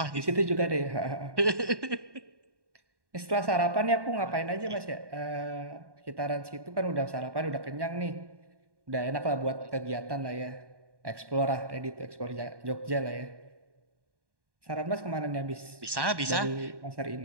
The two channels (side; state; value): left; late; 1.1 ms